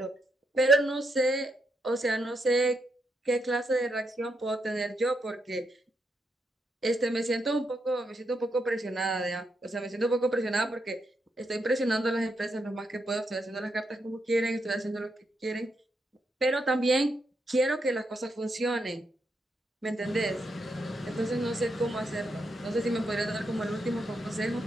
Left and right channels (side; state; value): both; normal; correlation 0.81